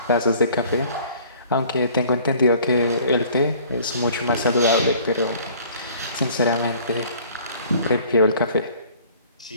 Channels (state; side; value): inverted; both; correlation -0.52